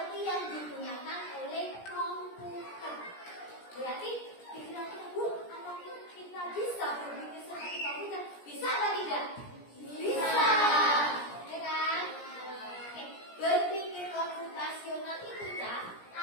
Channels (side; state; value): right; late; 17 ms